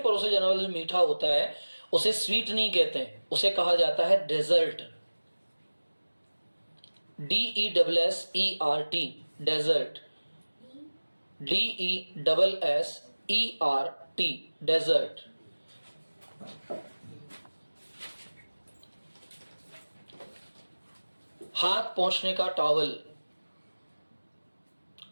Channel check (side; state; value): both; inverted; correlation -1.00